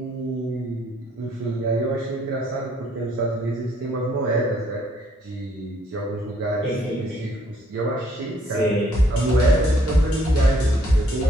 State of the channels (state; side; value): normal; both; correlation 0.66